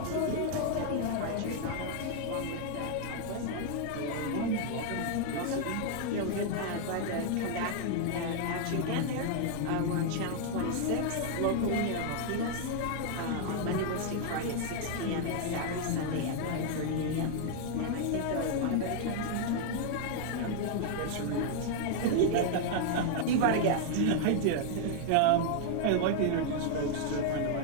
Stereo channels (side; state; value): both; different; correlation 0.00